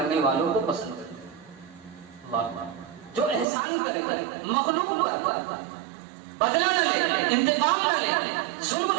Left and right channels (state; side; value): drops out; left; at 3.5 s